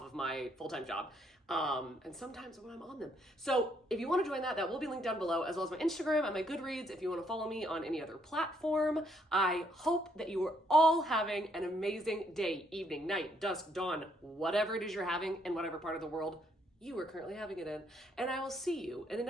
of my full-time job. And sometimes when I'm on them. So if you want to join that, that will be linked down below, as well as my Instagram and my Goodreads if you want to follow me on any other platform. I hope that you are all having an amazing day, evening, night, dusk, dawn, whatever it is you're having in whatever part of the world you are currently having it in. And I will see you in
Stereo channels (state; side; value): normal; both; correlation 0.71